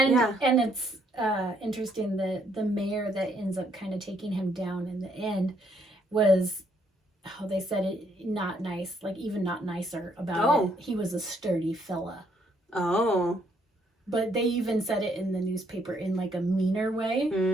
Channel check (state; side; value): normal; both; correlation 0.70